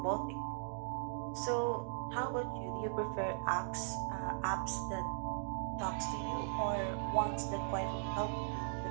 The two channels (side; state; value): left; silent; digital silence